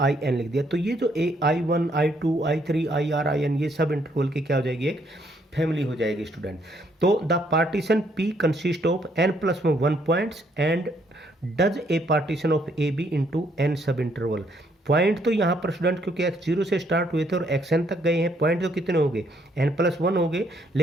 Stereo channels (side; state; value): both; normal; correlation 0.70